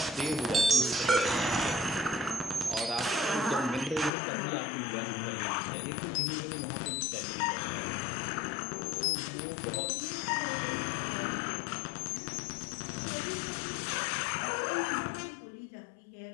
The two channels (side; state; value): right; drops out; at 4.1 s